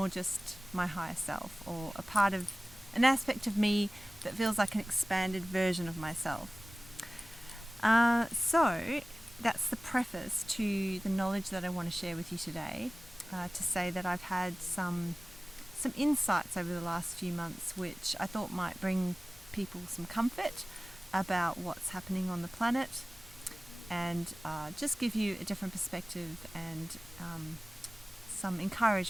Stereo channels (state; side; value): normal; both; correlation 0.97